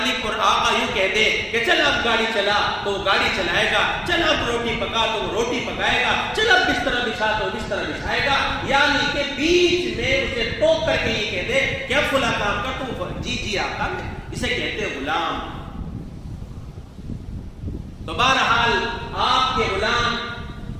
اور آقا یوں کہہ دے کہ چل اب گاڑی چلا تو وہ گاڑی چلائے گا، چل اب روٹی پکا تو وہ روٹی پکائے گا، چل اب بستر بچھا تو بستر بچھائے گا، یعنی کہ بیچ میں اسے ٹوک کر کے یہ کہہ دے کہ اب فلاں کام کر تو جی آقا، اسے کہتے ہیں غلام۔ تو بہرحال آپ کے غلام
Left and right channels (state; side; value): identical; both; correlation 1.00